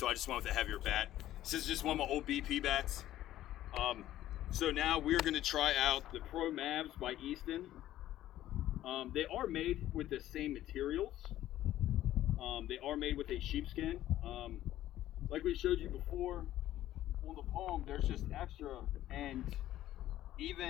I just went with a heavier bat. This is just one of my old BP bats. So now we're going to try out the Pro Mavs by Easton. They are made with the same materials. They are made with a sheepskin. Like we showed you before, on the palm, there's just extra, and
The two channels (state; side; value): quieter; right; 13.5 dB